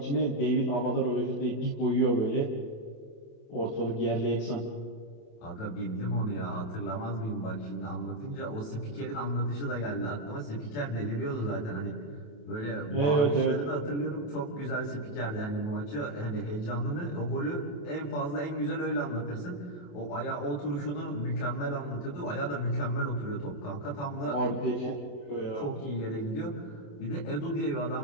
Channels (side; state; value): right; late; 28 ms